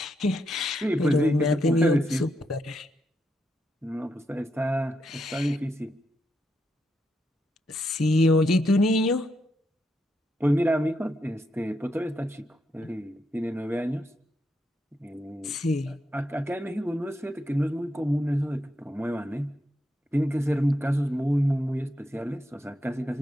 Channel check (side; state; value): both; normal; correlation 0.81